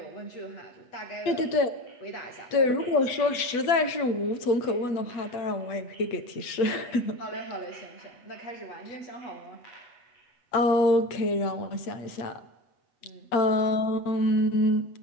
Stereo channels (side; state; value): right; late; 8.1 ms